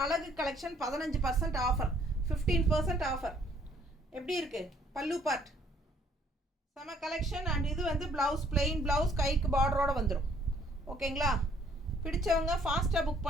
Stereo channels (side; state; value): both; normal; correlation 0.63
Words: அழகு கலெக்ஷன் 15% ஆஃபர், 15% ஆஃபர். எப்படி இருக்குது? பல்லு பார்ட் செம கலெக்ஷன். அண்ட் இது வந்து ப்ளவுஸ், பிளெயின் ப்ளவுஸ், கைக்கு பார்டரோடு வந்துடும். ஓகேங்களா? பிடிச்சவங்க ஃபாஸ்ட்டாக புக்